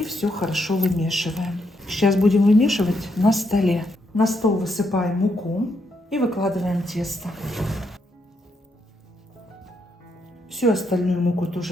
все хорошо вымешиваем. Сейчас будем вымешивать на столе. На стол высыпаем муку и выкладываем тесто. Всю остальную муку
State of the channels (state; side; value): normal; both; correlation 0.78